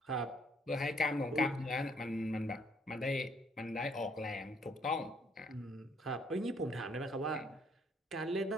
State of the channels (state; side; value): normal; both; correlation 0.66